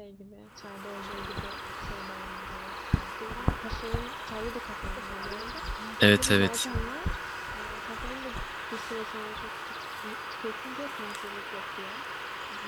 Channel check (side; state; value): both; identical; correlation 1.00